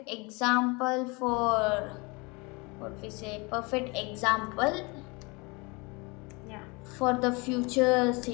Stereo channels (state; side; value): quieter; right; 27.8 dB